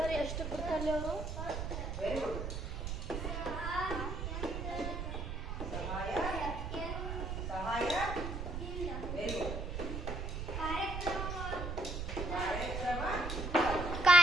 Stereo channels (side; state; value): right; noise; rumble, 4 dB below the sound